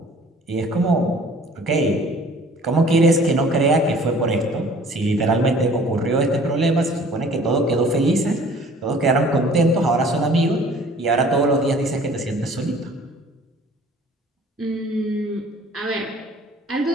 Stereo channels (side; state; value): both; normal; correlation 0.51